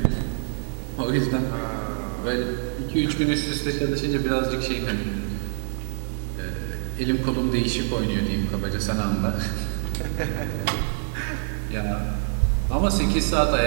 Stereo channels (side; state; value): left; silent; digital silence